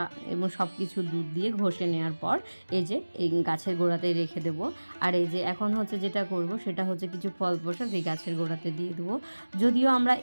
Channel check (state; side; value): inverted; both; correlation -1.00